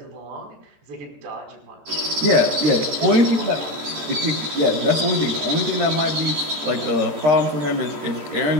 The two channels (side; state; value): left; late; 14 ms